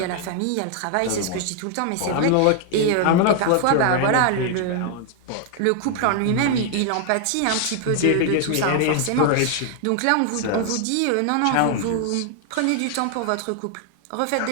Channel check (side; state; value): both; different; correlation 0.00